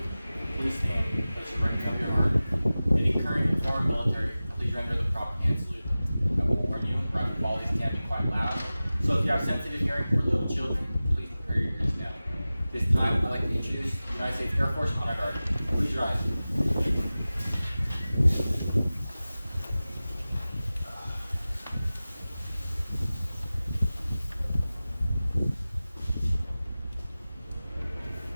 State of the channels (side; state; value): both; inverted; correlation -0.97